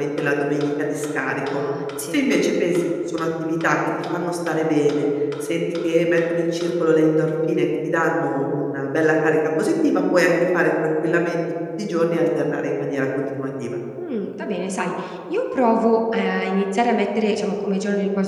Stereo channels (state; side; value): identical; both; correlation 1.00